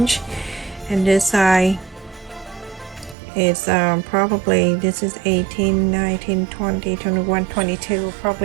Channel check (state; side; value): drops out; left; at 3.2 s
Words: and this side it's probably, this is 18, 19, 20, 21, 22,